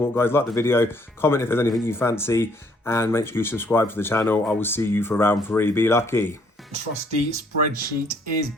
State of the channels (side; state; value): both; normal; correlation 0.65